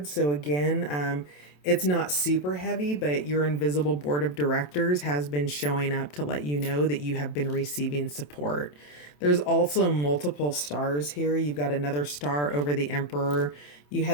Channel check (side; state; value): right; late; 27 ms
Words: So, again, it's not super heavy, but your invisible board of directors has been showing up to let you know that you have been receiving support. There's also multiple stars here. You've got another star over the emperor. You